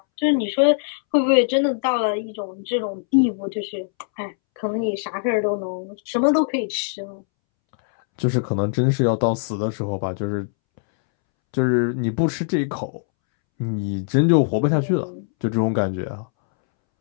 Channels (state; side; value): silent; right; 64 dB below the other